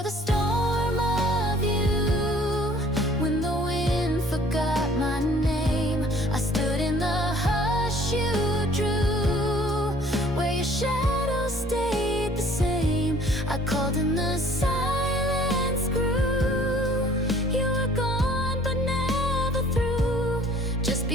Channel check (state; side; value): normal; both; correlation 0.55